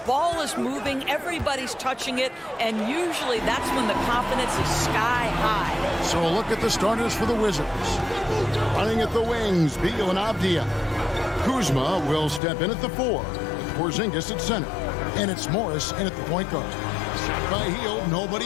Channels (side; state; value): right; drops out; at 12.4 s